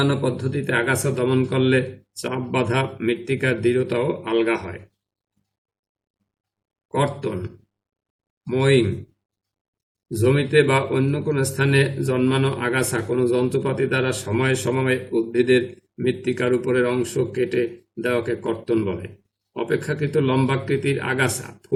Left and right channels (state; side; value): identical; both; correlation 1.00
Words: পদ্ধতিতে আগাছা দমন করলে চাপ বাঁধা মৃত্তিকার দৃঢ়তাও আলগা হয়। কর্তন, মোয়িং। জমিতে বা অন্য কোনো স্থানে জন্মানো আগাছা কোনো যন্ত্রপাতি দ্বারা সময়ে সময়ে উদ্ভিদের মৃত্তিকার উপরের অংশ কেটে দেওয়াকে কর্তন বলে। অপেক্ষাকৃত লম্বাকৃতির আগাছা